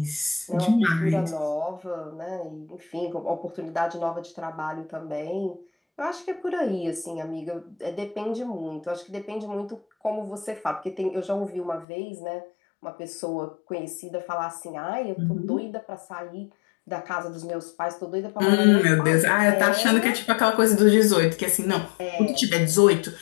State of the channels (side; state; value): right; drops out; at 11.9 s